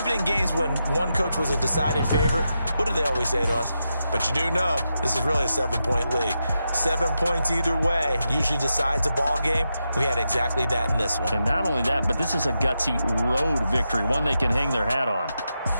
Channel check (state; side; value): inverted; both; correlation -0.87